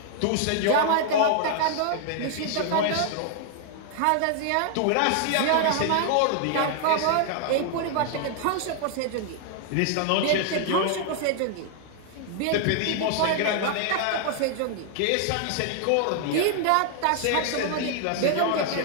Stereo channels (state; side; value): different; both; correlation 0.00